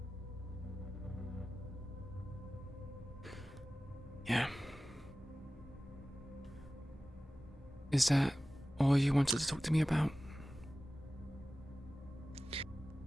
Yeah. Is that all you wanted to talk to me about?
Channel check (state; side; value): normal; both; correlation 0.96